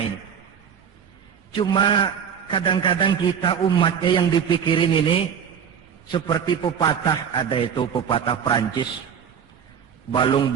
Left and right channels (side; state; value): left; quieter; 7.7 dB